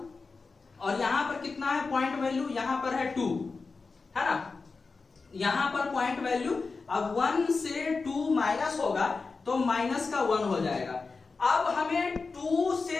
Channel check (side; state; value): right; quieter; 4.3 dB